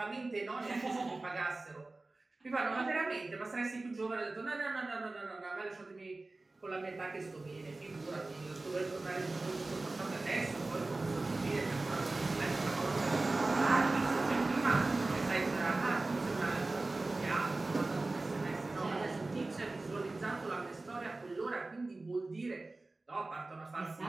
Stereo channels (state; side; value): quieter; left; 3.2 dB